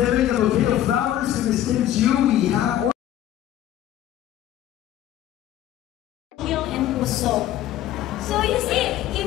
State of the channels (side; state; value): right; quieter; 12.3 dB